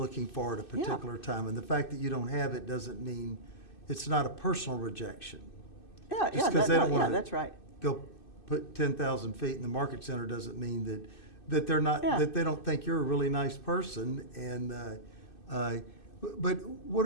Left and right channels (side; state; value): right; late; 2.6 ms